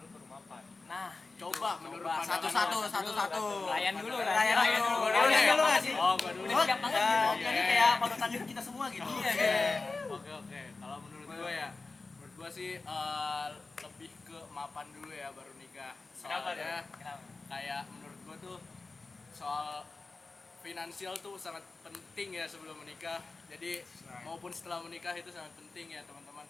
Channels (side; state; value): right; quieter; 3.7 dB